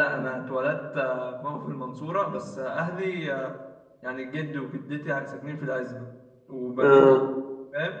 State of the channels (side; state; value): both; identical; correlation 1.00